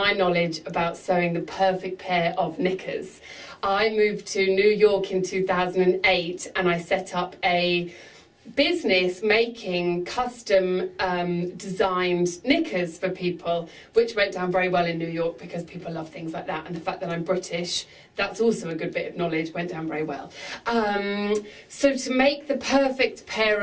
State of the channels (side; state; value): both; identical; correlation 1.00